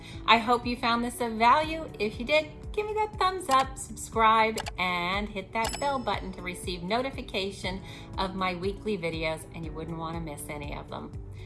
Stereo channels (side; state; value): both; identical; correlation 1.00